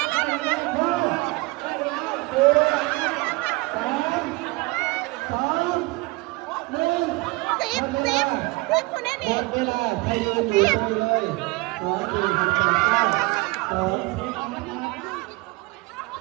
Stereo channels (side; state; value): left; quieter; 24.0 dB